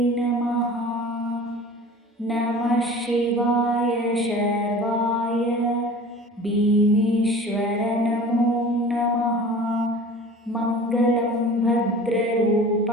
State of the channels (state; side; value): normal; both; correlation 0.42